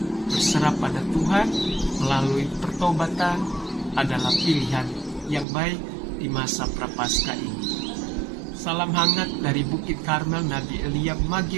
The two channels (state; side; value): drops out; left; at 5.5 s